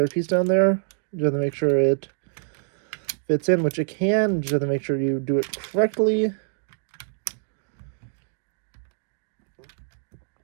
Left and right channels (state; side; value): silent; left; digital silence